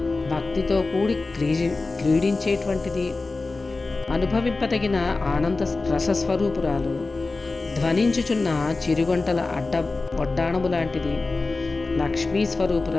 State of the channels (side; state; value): right; quieter; 3.6 dB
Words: భక్తితో కూడి క్రీడించేటువంటిది. అనుభవింపదగిన ఆనంద రసస్వరూపురాలు. ధ్వనించుచున్న చిరుగంటల వడ్డాణము లాంటిది. లక్ష్మీ